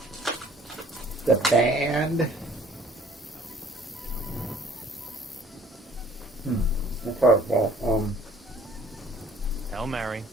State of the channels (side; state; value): both; normal; correlation 0.55